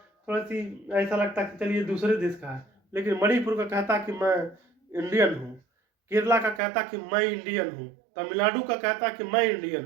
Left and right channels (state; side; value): drops out; left; at 6.6 s